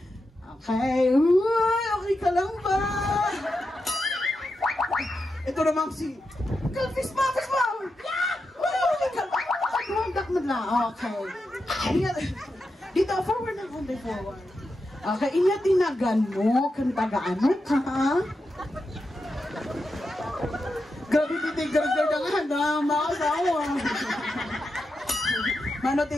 Okay. Uy, okay ka lang ba? Ito naman si... Fist bump! Uy, okay ka lang. Tumanggak mo lang. Okay. Dito, forward na konti, forward. Okay, tinagan mo. Kantagaan mo ka, ha? Grabe, titigil-tigil na nga. Mga asawa. Mano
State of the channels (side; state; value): both; normal; correlation 0.88